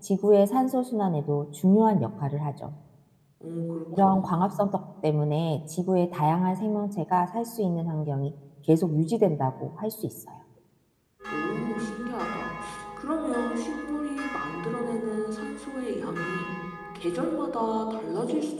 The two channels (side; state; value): both; identical; correlation 1.00